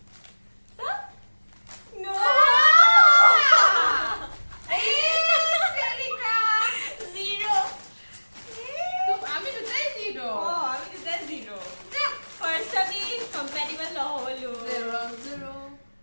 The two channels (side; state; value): both; inverted; correlation -1.00